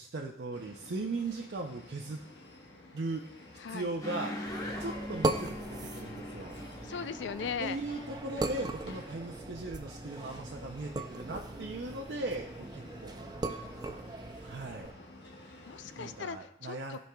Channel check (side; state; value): both; normal; correlation 0.38